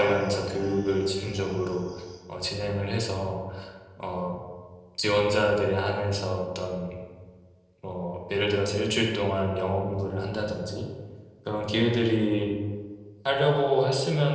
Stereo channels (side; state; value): both; identical; correlation 1.00